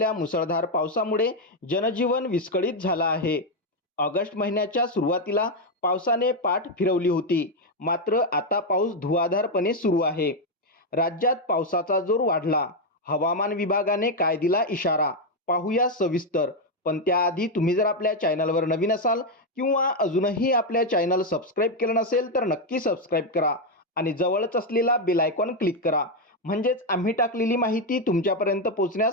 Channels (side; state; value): both; normal; correlation 0.04